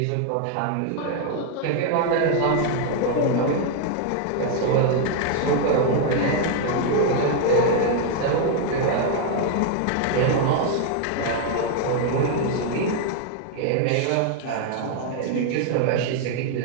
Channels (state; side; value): different; both; correlation 0.00